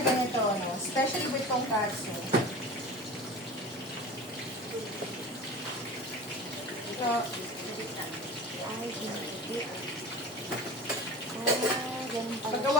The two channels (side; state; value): both; normal; correlation 0.35